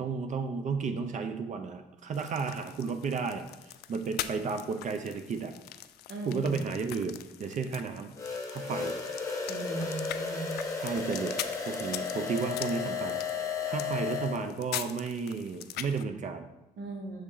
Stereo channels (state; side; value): normal; both; correlation 0.49